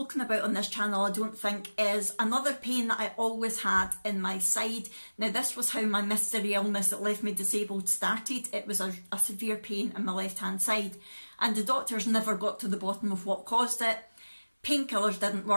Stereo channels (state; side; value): inverted; both; correlation -1.00